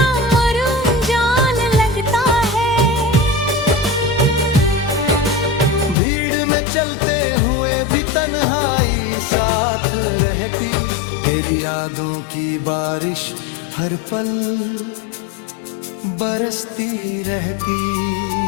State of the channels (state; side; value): drops out; right; at 6.0 s